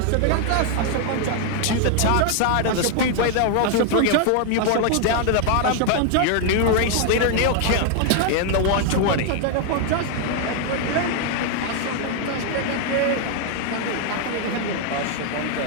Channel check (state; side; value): different; both; correlation 0.00